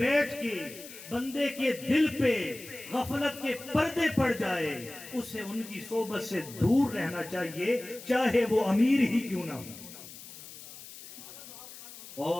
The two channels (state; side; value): noise; left; hiss, 15 dB below the sound